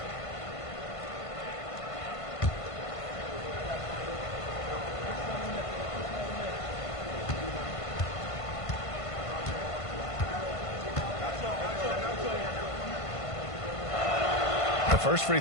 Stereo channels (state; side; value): late; right; 1.5 ms